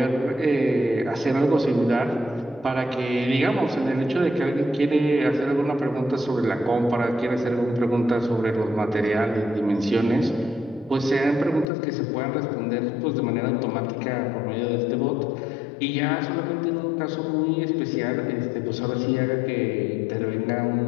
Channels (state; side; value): drops out; right; at 11.7 s